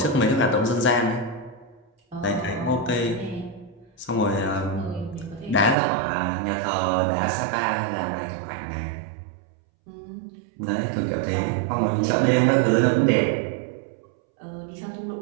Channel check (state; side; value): drops out; left; at 5.8 s